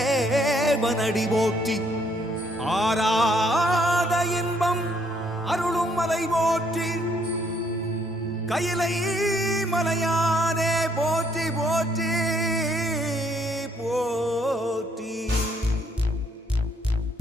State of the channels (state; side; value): normal; both; correlation 0.68